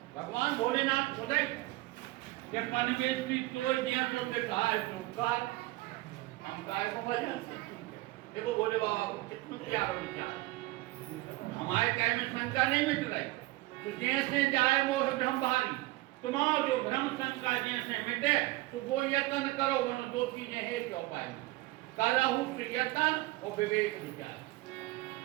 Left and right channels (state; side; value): quieter; left; 19.9 dB